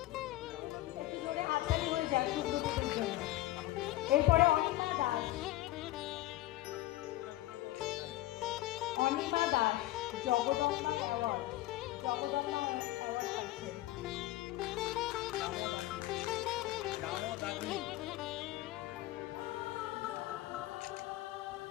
একটু জোরে হাততালি হয়ে যাক সুব্রতদের জন্য। এরপরে অনিমা দাস জগদম্বা অ্যাওয়ার্ড পাচ্ছেন।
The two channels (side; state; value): right; quieter; 16.4 dB